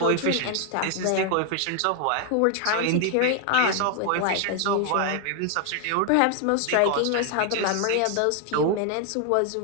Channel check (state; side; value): different; both; correlation 0.00